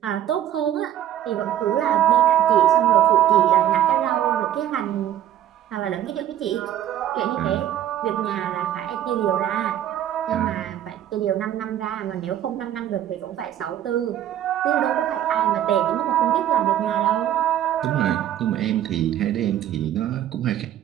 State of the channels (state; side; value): quieter; left; 11.5 dB